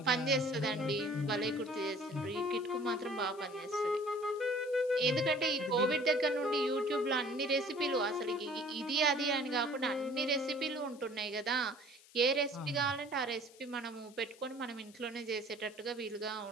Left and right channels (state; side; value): noise; left; hiss, 24 dB below the sound